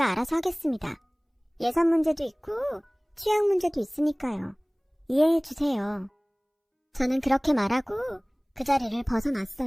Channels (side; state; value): both; identical; correlation 1.00